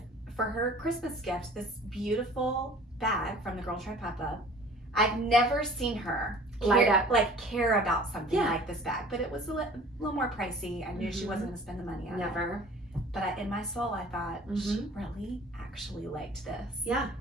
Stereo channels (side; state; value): both; normal; correlation 0.48